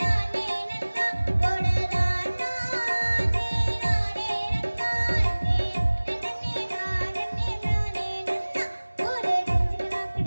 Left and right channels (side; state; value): both; inverted; correlation -1.00